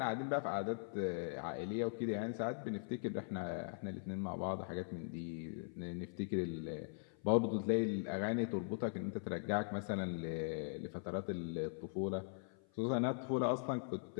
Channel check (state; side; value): silent; right; 50 dB below the other